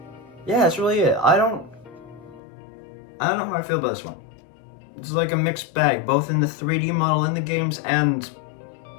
yeah, that's really it. I don't know how I feel about this one. it's like a mixed bag, both in the 3D model in the games and,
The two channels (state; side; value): drops out; right; at 2.4 s